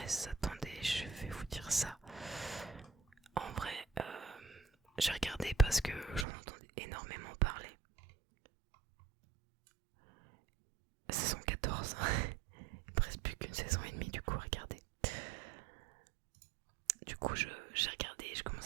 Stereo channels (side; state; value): left; drops out; at 6.2 s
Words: Attendez, je vais vous dire ça. En vrai, j'ai regardé parce que j'en entendais énormément parler. Saison 14. Il me reste plus qu'une saison et demie du coup à regarder. Du coup j'ai regardé, je commence